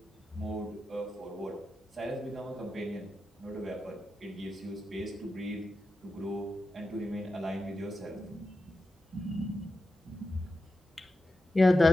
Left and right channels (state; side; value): normal; both; correlation 0.90